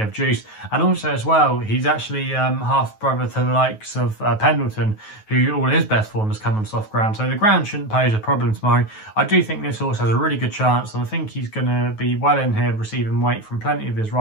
of juice. And also as well, he's actually half brother to the likes of Pendleton, who all his best form has come on soft ground, so the ground shouldn't pose a problem tomorrow. I do think this horse has a really good chance, and I think he's going to be well in here, receiving weight from plenty of his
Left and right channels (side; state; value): right; late; 9.3 ms